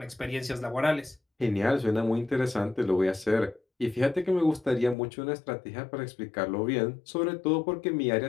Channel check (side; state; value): right; drops out; at 5.0 s